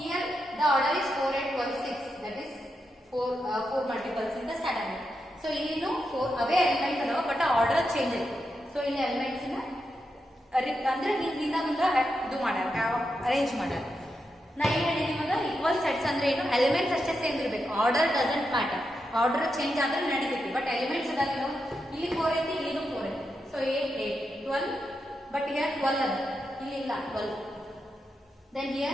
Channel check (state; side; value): normal; both; correlation 0.86